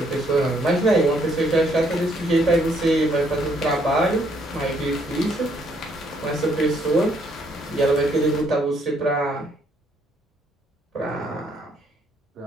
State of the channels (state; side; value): normal; both; correlation 0.69